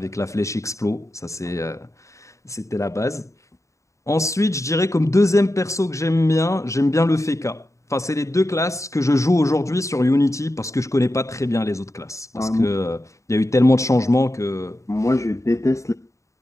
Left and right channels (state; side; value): late; right; 0.15 ms